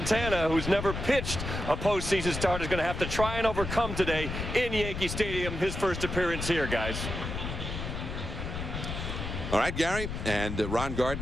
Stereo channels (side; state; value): left; noise; rumble, 5 dB below the sound